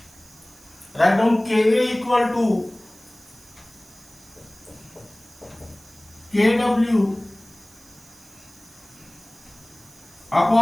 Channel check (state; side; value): noise; right; hiss, 24 dB below the sound